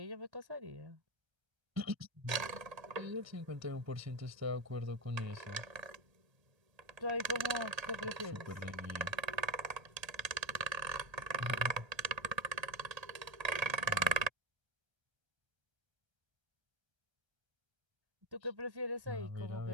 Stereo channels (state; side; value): late; left; 1.3 ms